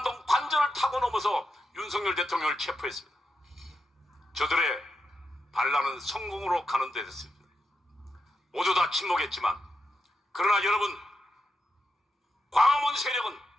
관전을 타고 넘어서 윤석열 대통령을 체포했습니다. 저들의 반란은 성공으로 가는 데 됐습니다. 모두 다 침묵했지만, 그러나 여러분, 광화문 세력은,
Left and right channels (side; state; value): both; normal; correlation 0.87